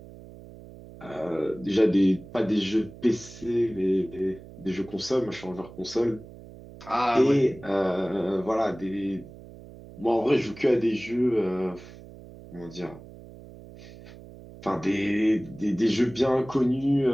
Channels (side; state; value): right; noise; hum, 18 dB below the sound